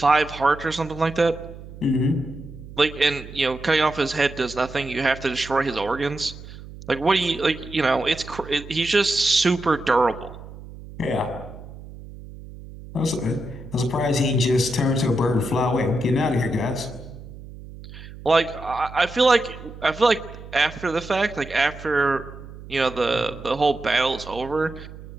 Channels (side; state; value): right; noise; hum, 15 dB below the sound